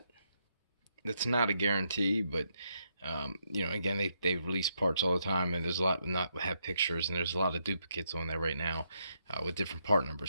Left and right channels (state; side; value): inverted; both; correlation -0.78